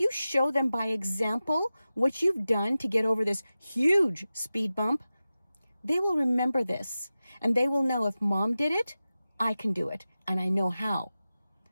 show them by example what you've done to get over this huge speed bump, they will remember this. And they will know, if mom did it, I can do it. And I know how.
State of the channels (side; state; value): both; inverted; correlation -0.95